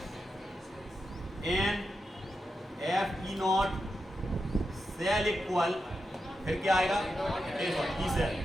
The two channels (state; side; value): normal; both; correlation 0.88